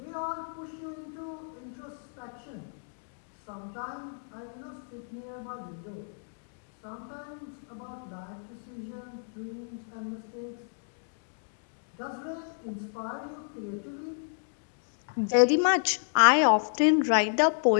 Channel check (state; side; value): silent; right; digital silence